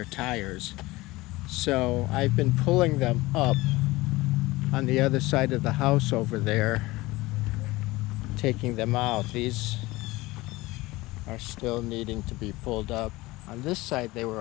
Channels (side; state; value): right; quieter; 20.2 dB